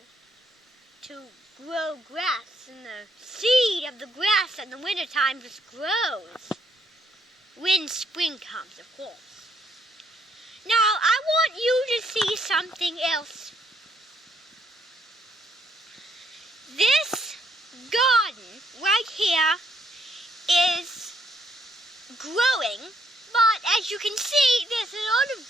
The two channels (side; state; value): both; normal; correlation 0.72